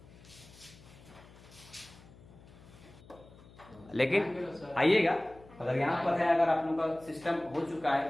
लेकिन आइएगा, अगर यहाँ पर है, अगर आप लोगों का सिस्टम हो चुका है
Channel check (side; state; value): left; noise; hum, 22 dB below the sound